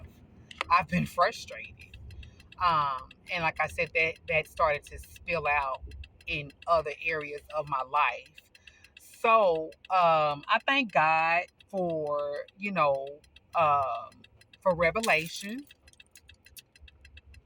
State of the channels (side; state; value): both; identical; correlation 1.00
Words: I've been frustrated. And like I said, that started to spill out in other areas of my life. So I thank God for, for revelation,